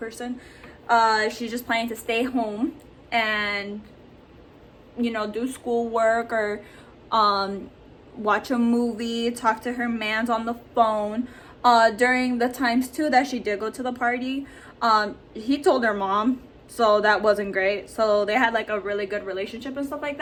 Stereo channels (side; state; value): both; identical; correlation 1.00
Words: She's just planning to stay home and, you know, do schoolwork or watch a movie, talk to her mans on the phone. During the times too that she did go to the party, he told her mom, so that wasn't great. So they had like a really good relationship and stuff like